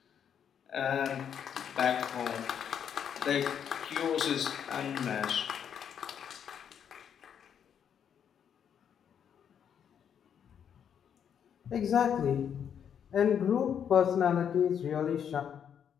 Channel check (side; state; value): right; quieter; 8.3 dB